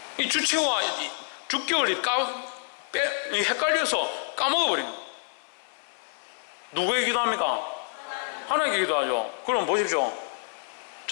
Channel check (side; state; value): right; silent; 60 dB below the other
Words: 이 주체와 주격을 헷갈려서 까먹어버린 거예요. 누구에게 기도합니까? 하나님께 기도하죠. 그럼 보십시오.